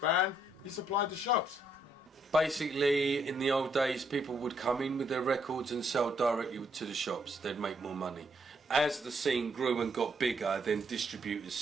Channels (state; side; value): normal; both; correlation 0.73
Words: you supply the shops. Basically, in the old days, people would come in with their records and sell directly to the shops. They'd make more money. As the scene grew and got bigger, then distributors